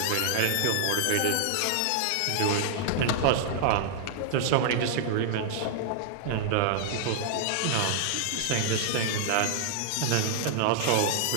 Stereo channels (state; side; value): different; both; correlation -0.01